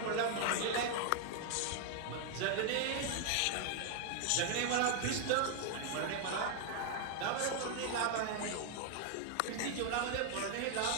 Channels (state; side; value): different; both; correlation 0.00